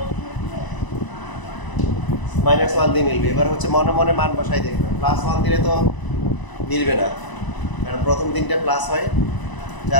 -1 দিয়ে মিলবে। এবার হচ্ছে মনে মনে মান বসাই দেখবে, +1 দিলে তো মিলবে না, কারণ প্রথম দিনটা প্লাস হয়,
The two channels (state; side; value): late; right; 1.0 ms